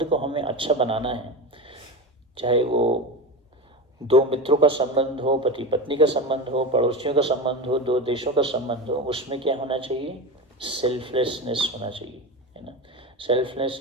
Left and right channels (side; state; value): both; normal; correlation 0.23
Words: को हमें अच्छा बनाना है, चाहे वो दो मित्रों का संबंध हो, पति पत्नी का संबंध हो, पड़ोसियों का संबंध हो, दो देशों का संबंध हो, उसमें क्या होना चाहिए, सेल्फलेसनेस होना चाहिए, है ना।